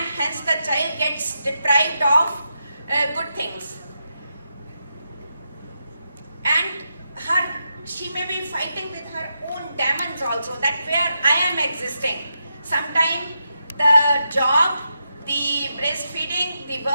hence the child gets deprived of good things. And she may be fighting with her own demons also, that where I am existing. Sometimes the job, the breastfeeding, the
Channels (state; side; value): inverted; both; correlation -0.85